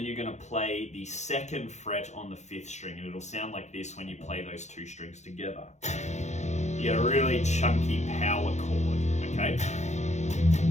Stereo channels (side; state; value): right; late; 0.33 ms